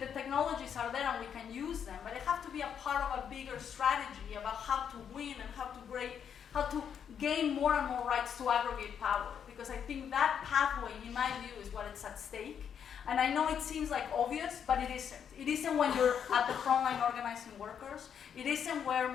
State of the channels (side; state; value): right; quieter; 8.0 dB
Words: technologies are there and we can use them, but they have to be a part of a bigger strategy about how to win and how to gain more and more rights to aggregate power. Because I think that pathway, in my view, is what is at stake. And I know it seems like obvious, but it isn't. It isn't when you're at the front line organizing workers. It isn't where